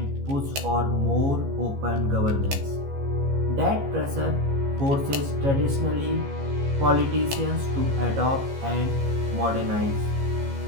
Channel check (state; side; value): late; left; 15 ms